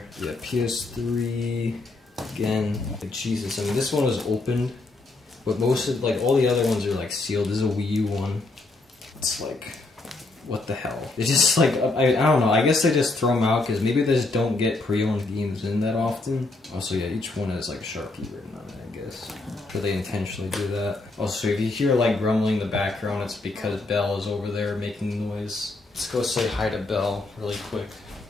Yeah, PS3, again, like Jesus, I mean this one was opened, but most of, like all the other ones are like sealed. This is a Wii U one. It's like, what the hell? It's just like, I don't know, I guess they just throw them out because maybe they just don't get pre-owned games in that often. Also, yeah, each one has like Sharpie written on it, I guess. Or they intentionally do that. Also, if you hear like grumbling in the background, it's because Belle is over there making noise. Let's go say hi to Belle really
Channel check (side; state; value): right; quieter; 3.2 dB